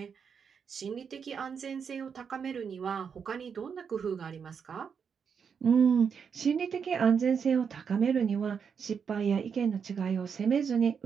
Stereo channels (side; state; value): left; quieter; 6.6 dB